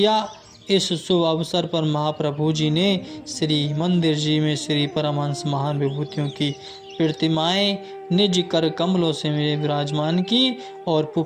इस शुभ अवसर पर महाप्रभु जी ने श्री मंदिर जी में श्री परमहंस महान विभूतियों की प्रतिमाएं निज कर कमलों से विराजमान की और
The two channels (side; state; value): both; identical; correlation 1.00